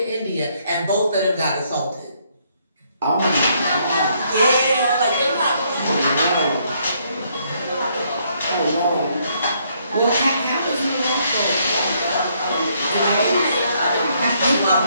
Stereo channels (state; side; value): inverted; both; correlation -0.70